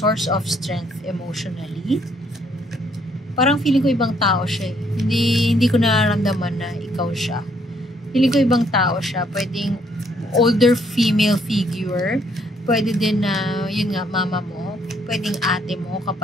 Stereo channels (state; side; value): normal; both; correlation 0.68